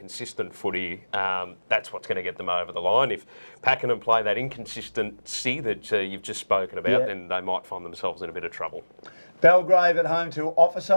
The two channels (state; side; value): inverted; both; correlation -1.00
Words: footy, that's what's going to get them over the line. If Pakenham play that inconsistency that you've just spoken about, then they might find themselves in a bit of trouble. Belgrave at home to Officer.